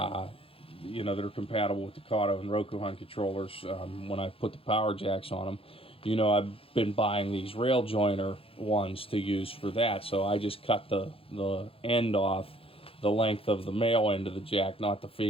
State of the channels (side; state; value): right; late; 0.27 ms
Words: know, that are compatible with the Kato and Rokuhan controllers. When I put the power jacks on them, you know, I've been buying these rail joiner ones to use for that. So I just cut the end off the length of the male end of the jack, not the